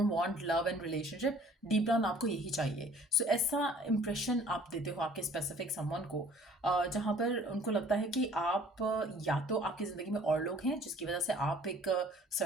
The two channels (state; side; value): normal; both; correlation 0.53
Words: want love and relationship, deep down आपको यही चाहिए। सो ऐसा इंप्रेशन आप देते हो आपके स्पेसिफिक समवन को, जहाँ पर उनको लगता है कि आप या तो आपकी ज़िंदगी में और लोग हैं जिसकी वजह से आप एक